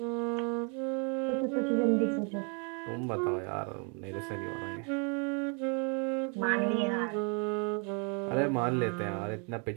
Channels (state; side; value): quieter; left; 37.1 dB